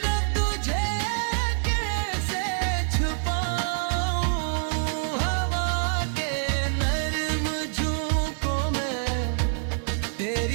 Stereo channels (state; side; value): silent; left; digital silence